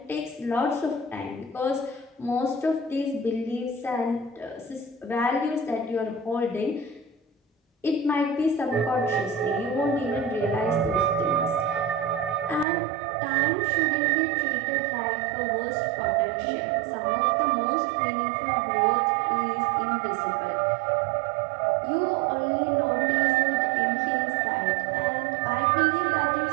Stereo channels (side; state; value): left; drops out; at 12.7 s